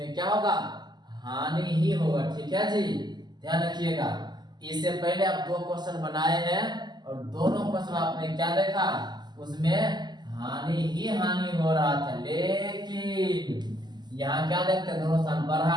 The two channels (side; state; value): left; late; 0.21 ms